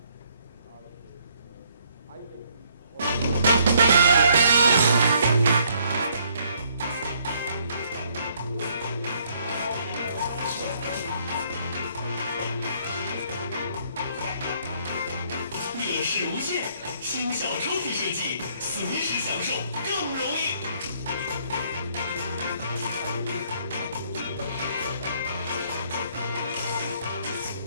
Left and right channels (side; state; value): both; inverted; correlation -0.66